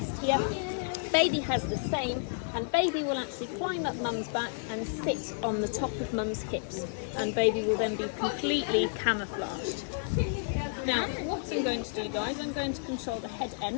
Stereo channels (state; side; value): silent; right; 57 dB below the other